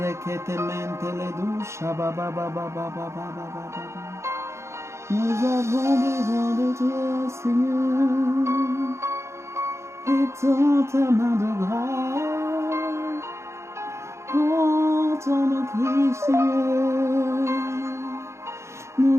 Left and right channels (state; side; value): late; left; 0.13 ms